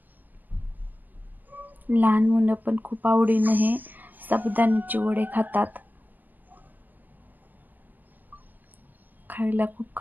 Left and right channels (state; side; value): late; left; 0.085 ms